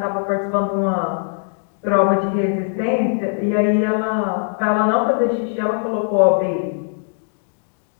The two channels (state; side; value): silent; right; digital silence